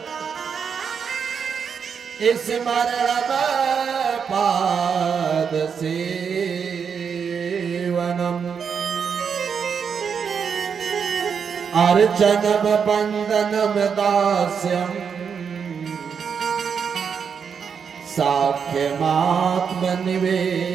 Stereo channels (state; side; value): quieter; left; 6.7 dB